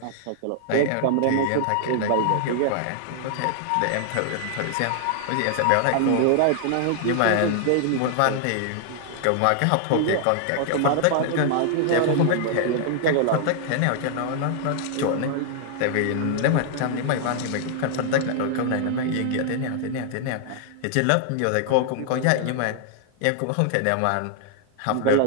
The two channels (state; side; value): different; both; correlation 0.00